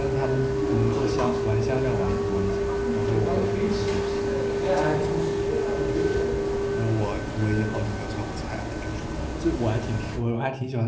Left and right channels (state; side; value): identical; both; correlation 1.00